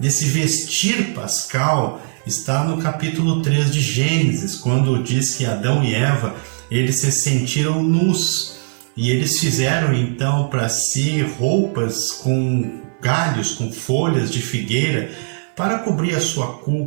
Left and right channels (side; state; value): left; silent; 56 dB below the other